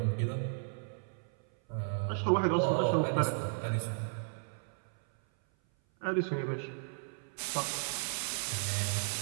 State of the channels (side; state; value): left; silent; 55 dB below the other